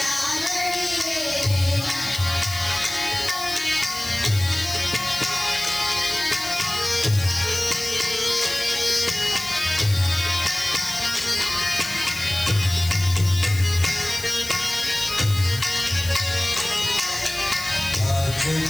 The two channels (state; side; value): noise; left; hiss, 11 dB below the sound